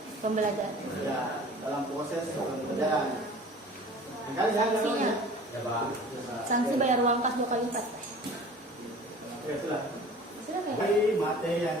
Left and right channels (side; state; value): both; normal; correlation 0.44